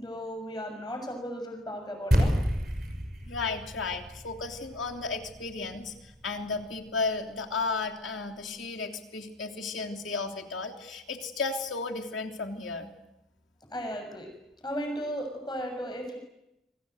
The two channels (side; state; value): both; normal; correlation 0.46